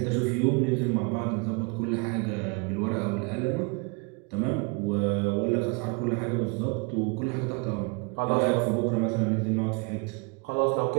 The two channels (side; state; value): left; quieter; 31.5 dB